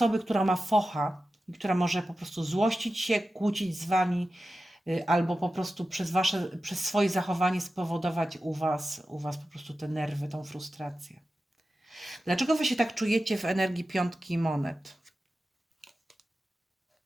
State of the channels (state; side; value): normal; both; correlation 0.93